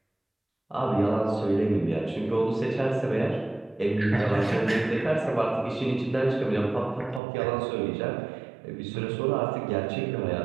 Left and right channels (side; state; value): left; drops out; at 7.2 s